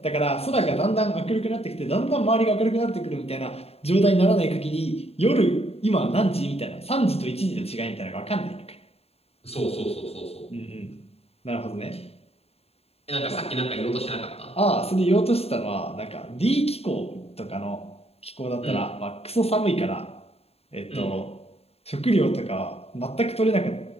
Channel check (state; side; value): late; right; 0.29 ms